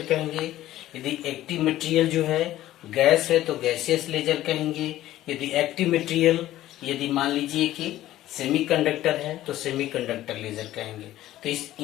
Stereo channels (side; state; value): right; quieter; 14.4 dB